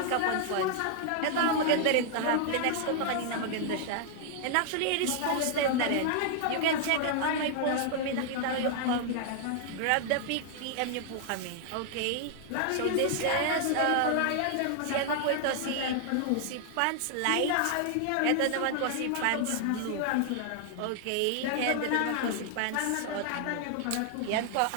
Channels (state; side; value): different; both; correlation 0.00